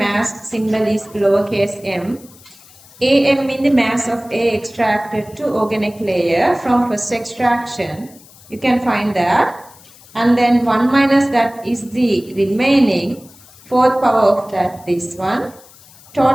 symbol is lowercase m. AM means the mass of A extracted to organic layer from first extraction. You can find that. And then 1 minus that is the remaining fourth power of that, this one.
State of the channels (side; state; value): left; noise; hiss, 24 dB below the sound